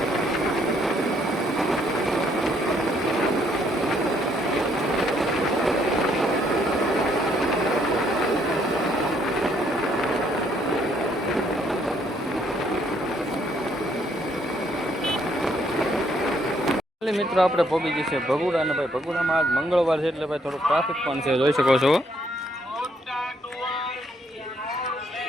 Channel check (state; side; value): normal; both; correlation 0.69